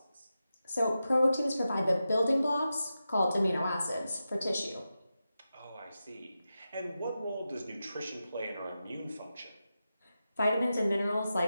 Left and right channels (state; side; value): inverted; both; correlation -0.91